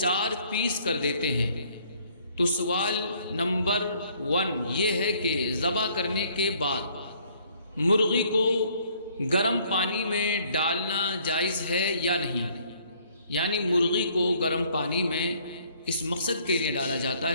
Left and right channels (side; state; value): both; inverted; correlation -0.62